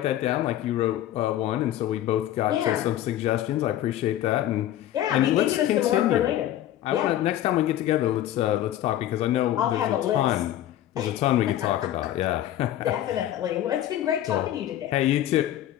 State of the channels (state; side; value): quieter; right; 12.6 dB